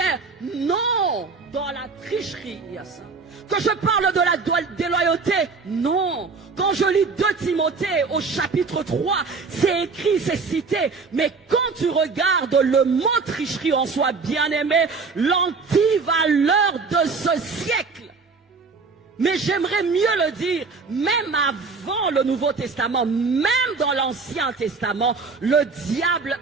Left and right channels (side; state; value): left; quieter; 4.5 dB